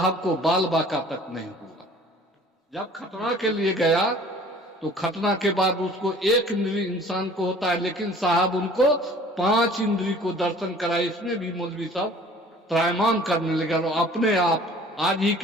को बाल बाका तक नहीं हुआ। जब खतना के लिए गया तो खतना के बाद उसको 1 इंद्री इंसान को होता है, लेकिन साहब उनको 5 इंद्री को दर्शन कराए। इसमें भी मौलवी साहब त्रायमान करने लगे और अपने आप आज ही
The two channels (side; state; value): both; normal; correlation 0.50